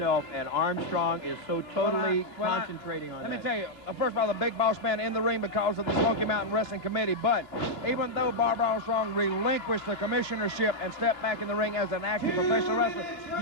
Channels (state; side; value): late; right; 2.9 ms